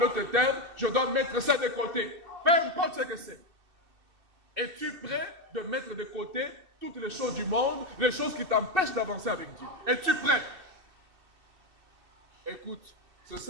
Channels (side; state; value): left; late; 2.6 ms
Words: termes, je dois mettre ça de côté. Peu importe ce que c'est. Es-tu prêt de mettre de côté toutes les choses du monde, les choses qui t'empêchent d'avancer avec Dieu? Es-tu prêt? Écoute, ce